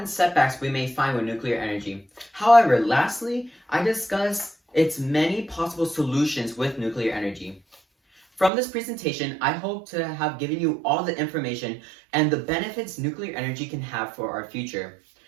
setbacks we may find with nuclear energy. However, lastly, I discussed its many possible solutions with nuclear energy. From this presentation, I hope to have given you all the information and the benefits nuclear energy can have for our future.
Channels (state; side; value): drops out; left; at 8.5 s